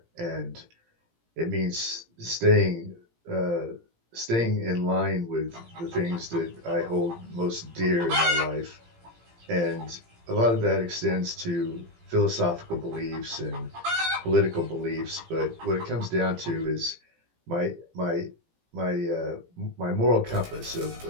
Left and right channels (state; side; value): late; left; 17 ms